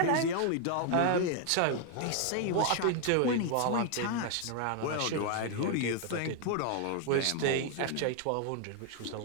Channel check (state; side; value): different; both; correlation 0.00